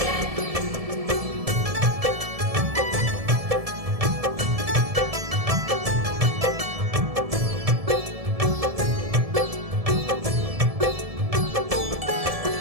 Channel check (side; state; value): left; late; 1.7 ms